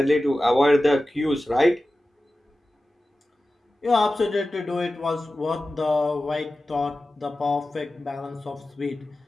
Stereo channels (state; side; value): normal; both; correlation 0.95